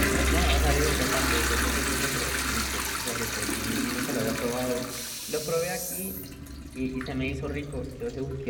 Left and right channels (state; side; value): identical; both; correlation 1.00